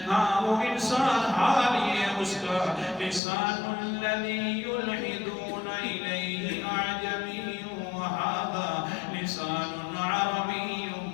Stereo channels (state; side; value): drops out; right; at 3.2 s